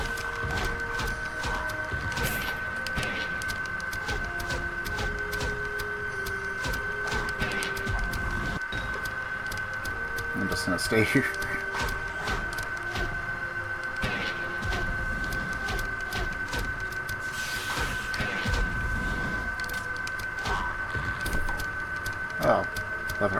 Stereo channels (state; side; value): identical; both; correlation 1.00